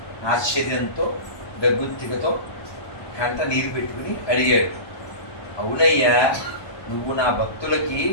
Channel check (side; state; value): right; late; 1.2 ms